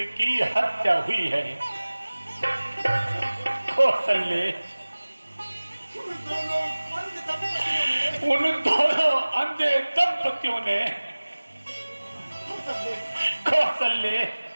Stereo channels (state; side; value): inverted; both; correlation -1.00